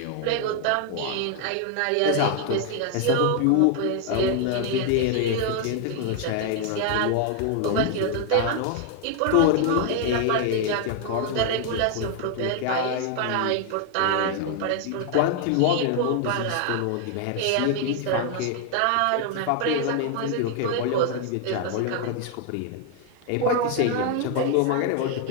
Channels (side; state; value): both; different; correlation 0.00